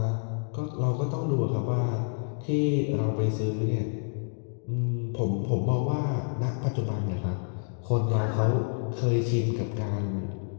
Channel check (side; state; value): right; silent; 59 dB below the other